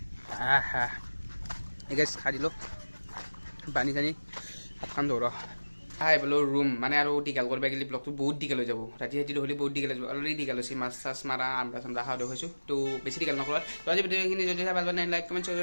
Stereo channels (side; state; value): both; inverted; correlation -1.00